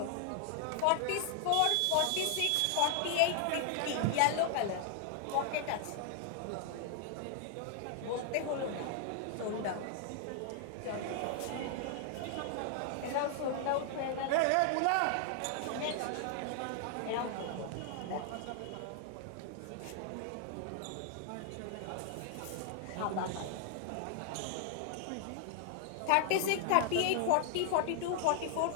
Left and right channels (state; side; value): different; both; correlation 0.00